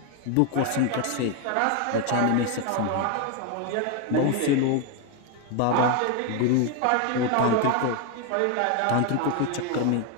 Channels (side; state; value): both; different; correlation 0.01